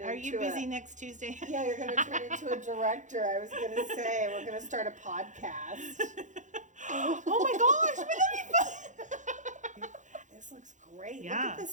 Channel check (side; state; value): left; late; 0.36 ms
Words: Are you busy next Tuesday? Yeah, you're going to turn into a director. I was going to say, we're going to start a podcast. Oh my gosh, wouldn't that be fun? This looks great. Yeah. Look at the